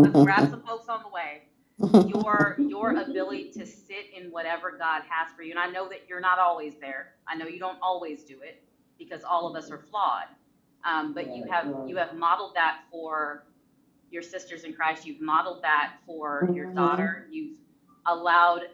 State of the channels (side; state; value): both; identical; correlation 1.00